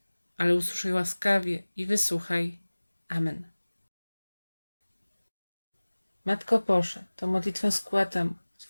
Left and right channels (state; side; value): inverted; both; correlation -1.00